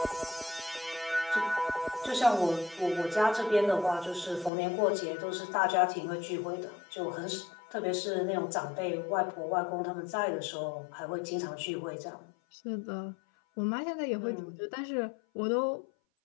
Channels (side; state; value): right; drops out; at 4.5 s